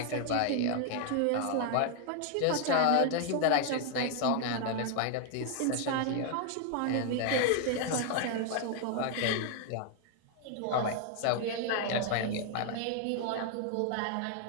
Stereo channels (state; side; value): different; both; correlation 0.00